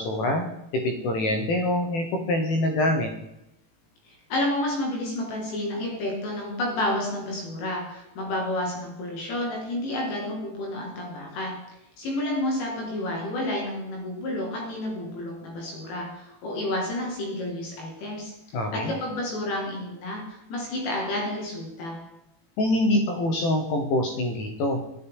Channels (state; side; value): late; right; 18 ms